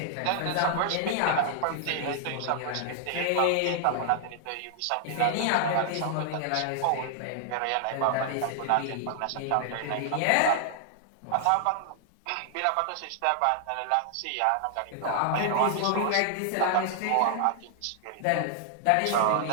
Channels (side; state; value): both; different; correlation -0.01